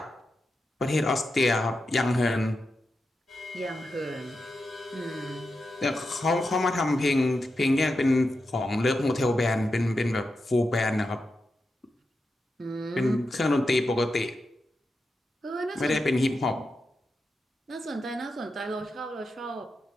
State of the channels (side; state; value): both; normal; correlation 0.88